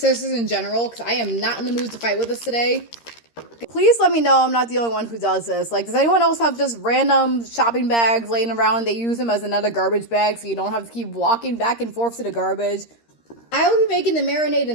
in general, because I am not in the mood to fight with this today. Please let me know I'm not the only one who does this. Like, does anyone else have just random shopping bags laying around? They use them as another garbage bag, so you don't have to keep walking back and forth to the garbage. I will be making the marinade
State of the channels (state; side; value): late; right; 13 ms